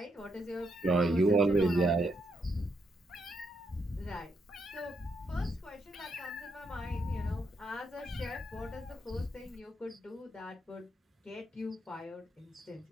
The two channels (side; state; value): both; normal; correlation 0.78